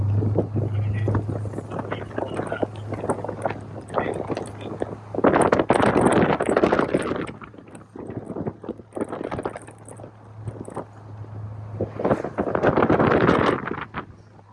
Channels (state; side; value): identical; both; correlation 1.00